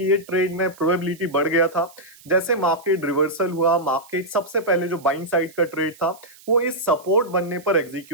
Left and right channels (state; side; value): noise; right; hiss, 24 dB below the sound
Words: ये ट्रेड में प्रोबेबिलिटी बढ़ गया था, जैसे मार्केट रिवर्सल हुआ, मार्केट सबसे पहले जो बाइंग साइड का ट्रेड था वो इस सपोर्ट बनने पर